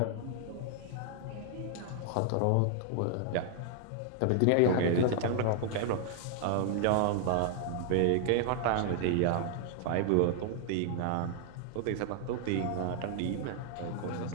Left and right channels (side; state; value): both; different; correlation 0.00